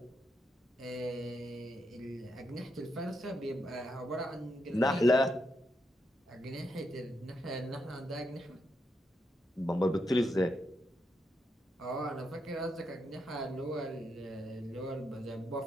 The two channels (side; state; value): both; normal; correlation 0.82